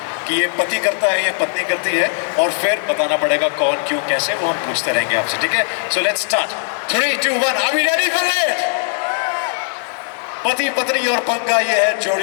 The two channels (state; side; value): silent; right; 67 dB below the other